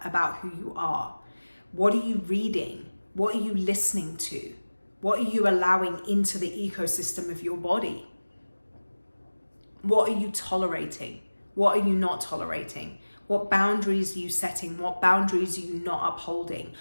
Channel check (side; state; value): both; inverted; correlation -1.00